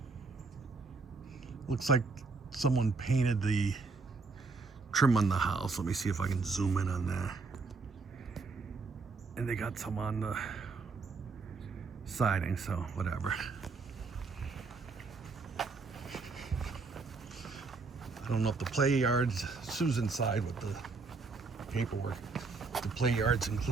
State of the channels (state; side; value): quieter; left; 4.2 dB